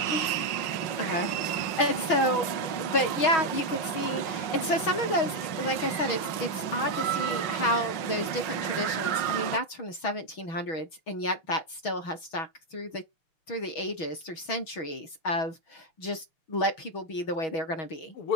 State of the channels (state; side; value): late; right; 6.2 ms